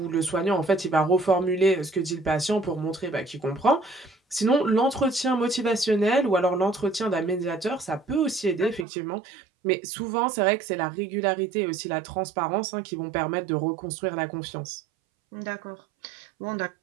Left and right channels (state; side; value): drops out; left; at 8.8 s